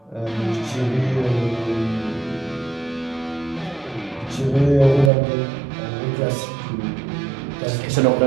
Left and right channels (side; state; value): left; drops out; at 5.1 s